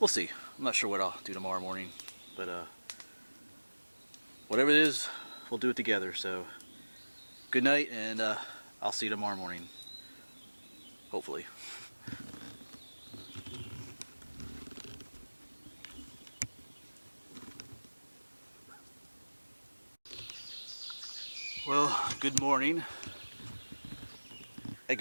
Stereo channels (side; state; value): both; inverted; correlation -1.00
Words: see. I'm not sure what I'll do tomorrow morning, but whatever it is, we'll do it together. So, good night, and I'll see you tomorrow morning. Hopefully. Well, good morning. I